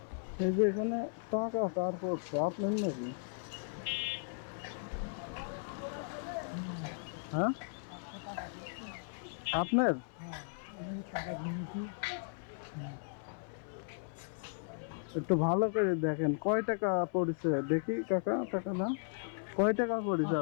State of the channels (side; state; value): right; silent; 54 dB below the other